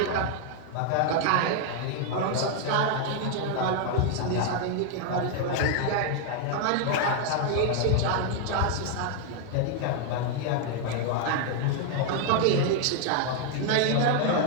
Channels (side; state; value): both; different; correlation 0.00